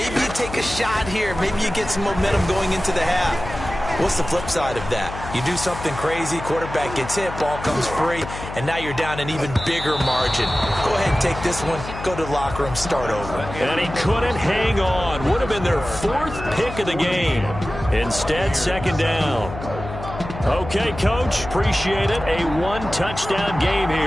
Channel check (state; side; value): noise; left; hum, 10 dB below the sound